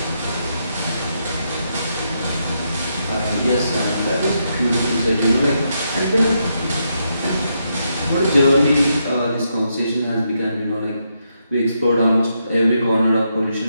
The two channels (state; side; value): inverted; both; correlation -0.81